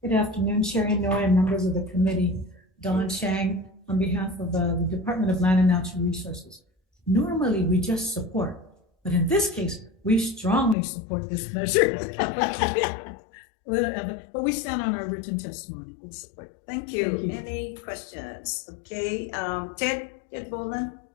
Good afternoon, Chair Inoue and members of the committee. Don Chang on behalf of the Department of Land and Natural Resources. Normally, we just support, but in this case, we strongly support this measure. But we stand on our written testimony. Thank you. Any questions? Okay, Ted Boland.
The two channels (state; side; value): drops out; right; at 10.8 s